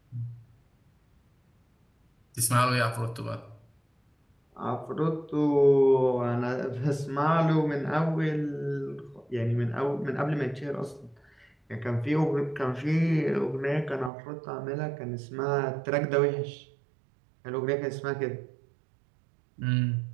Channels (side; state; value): left; drops out; at 14.1 s